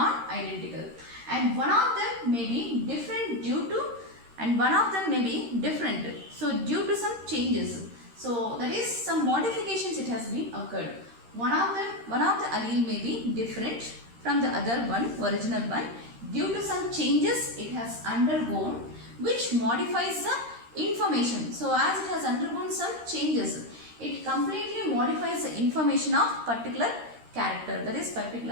and one of them may be different due to, and one of them may be different, so due to some changes. So that is, some modifications it has been occurred. One of the allele may be different from the other one, original one, due to some changes it has undergone, which modifies the information. So as it has undergone some changes, it completely modifies the information of particular character, that is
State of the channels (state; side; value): late; left; 13 ms